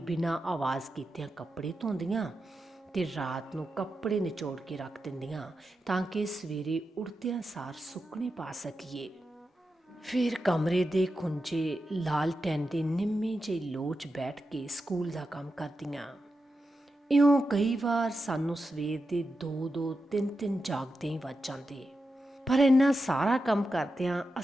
ਬਿਨਾਂ ਆਵਾਜ਼ ਕੀਤਿਆਂ ਕੱਪੜੇ ਧੋਂਦੀਆਂ ਤੇ ਰਾਤ ਨੂੰ ਕੱਪੜੇ ਨਿਚੋੜ ਕੇ ਰੱਖ ਦਿੰਦੀਆਂ ਤਾਂ ਕਿ ਸਵੇਰੇ ਉੱਠਦਿਆਂ ਸਾਰ ਸੁੱਕਣੇ ਪਾ ਸਕੀਏ। ਫਿਰ ਕਮਰੇ ਦੇ ਖੁੰਝੇ ਲਾਲਟੈਨ ਦੀ ਨਿੰਮੀ ਜਿਹੀ ਲੋਚ ਬੈਠ ਕੇ ਸਕੂਲ ਦਾ ਕੰਮ ਕਰਦੀਆਂ। ਇਉਂ ਕਈ ਵਾਰ ਸਾਨੂੰ ਸਵੇਰ ਦੇ 2-2, 3-3 ਜਾਗਦੇ ਹੀ ਵੱਜ ਜਾਂਦੇ, ਪਰ ਇੰਨਾ ਸਾਰਾ ਕੰਮ ਕਰਦਿਆਂ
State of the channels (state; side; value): normal; both; correlation 0.89